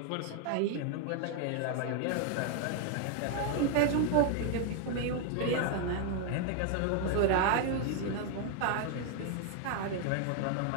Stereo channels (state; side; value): different; both; correlation 0.00